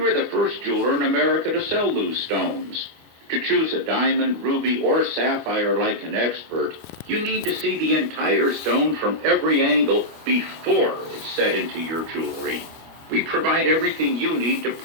the first jeweler in America to sell loose stones. To choose a diamond, ruby, or sapphire like an expert, you need to see the entire stone from every angle before it's set into your jewelry. We provide everything you need to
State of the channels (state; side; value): late; left; 25 ms